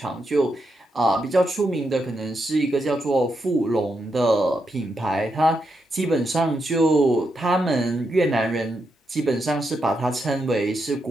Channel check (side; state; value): both; normal; correlation 0.83